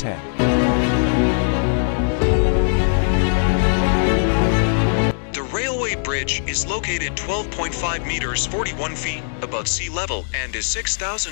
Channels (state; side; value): silent; right; 66 dB below the other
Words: The railway bridge is located 12.5 meters 41 feet above sea level and is